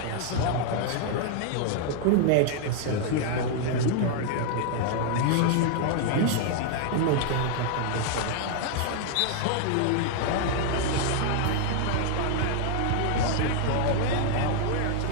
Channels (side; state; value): both; different; correlation 0.00